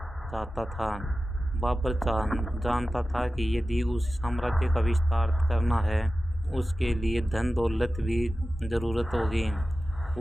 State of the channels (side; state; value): both; normal; correlation 0.94